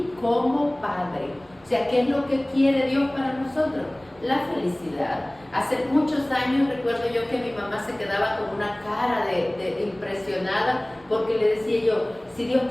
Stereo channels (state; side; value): noise; right; rumble, 29 dB below the sound